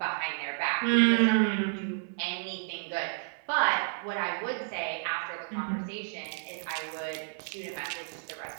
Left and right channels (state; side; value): silent; left; 57 dB below the other